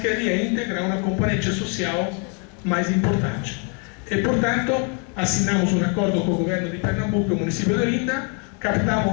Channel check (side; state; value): right; quieter; 36.0 dB